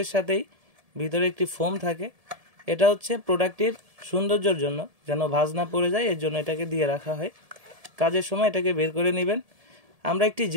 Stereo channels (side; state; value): left; late; 1.7 ms